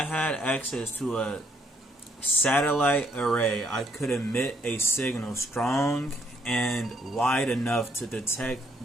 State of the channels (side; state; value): both; normal; correlation 0.68